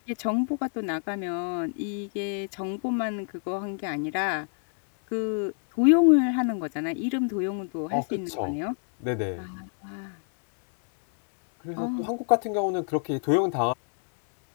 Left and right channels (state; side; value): silent; right; 59 dB below the other